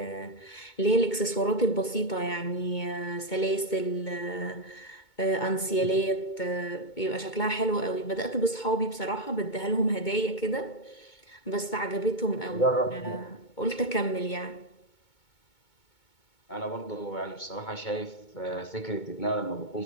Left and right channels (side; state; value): right; late; 2.2 ms